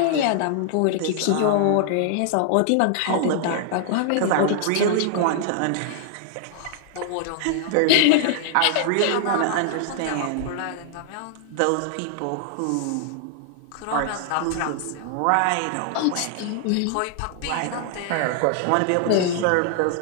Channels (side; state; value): both; different; correlation -0.01